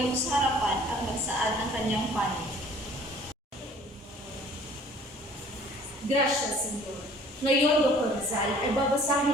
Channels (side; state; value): both; normal; correlation 0.53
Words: sa harapan at magsaad ng kanyang panig. Gracias, Senyor. Ngayon, Dr. Rizal, ay